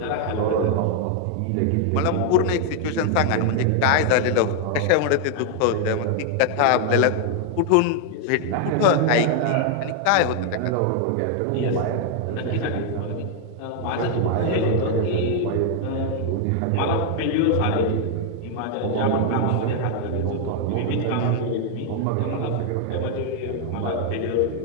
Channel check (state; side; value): different; both; correlation 0.00